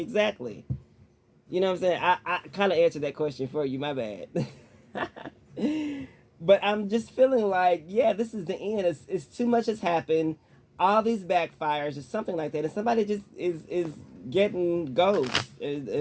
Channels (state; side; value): identical; both; correlation 1.00